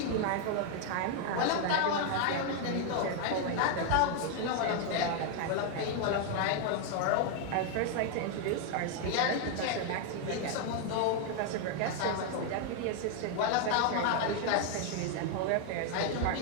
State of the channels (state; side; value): different; both; correlation 0.00